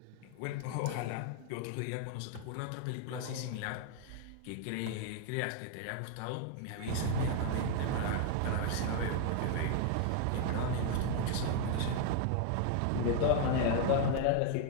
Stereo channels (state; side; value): different; both; correlation 0.00